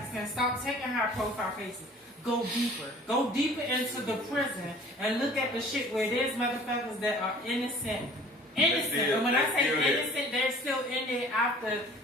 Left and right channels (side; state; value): both; normal; correlation 0.49